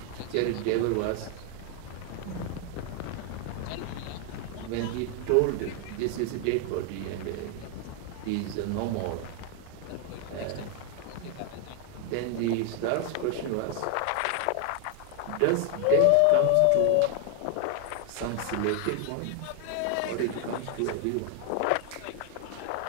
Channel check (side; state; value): both; different; correlation 0.00